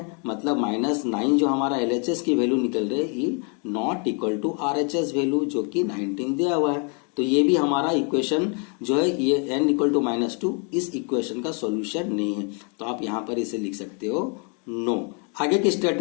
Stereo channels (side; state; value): right; quieter; 37.3 dB